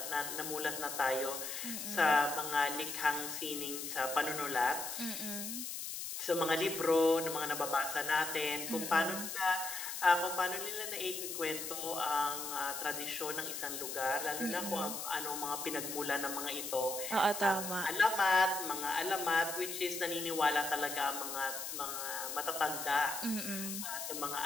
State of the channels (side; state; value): left; noise; hiss, 5 dB below the sound